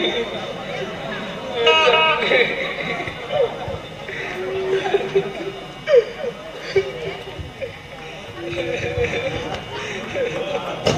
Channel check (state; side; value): identical; both; correlation 1.00